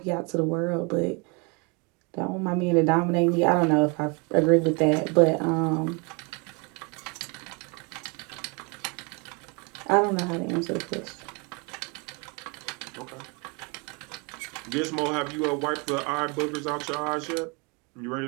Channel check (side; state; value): left; quieter; 31.4 dB